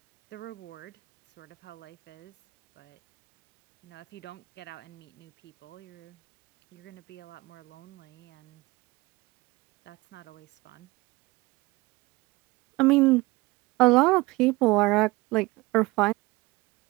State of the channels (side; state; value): left; quieter; 22.3 dB